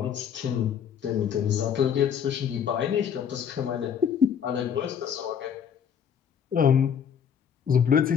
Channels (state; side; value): quieter; right; 7.9 dB